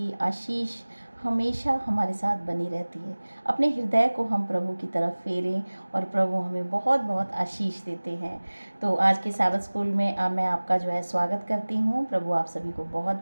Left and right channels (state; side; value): inverted; both; correlation -1.00